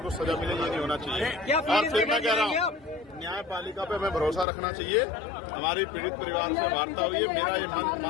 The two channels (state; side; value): drops out; right; at 4.5 s